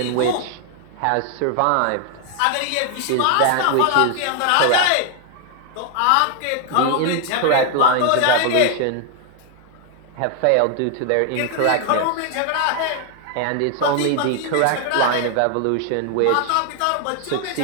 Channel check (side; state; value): both; different; correlation 0.00